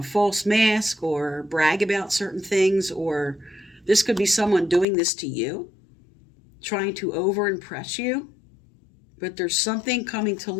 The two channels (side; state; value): right; drops out; at 4.9 s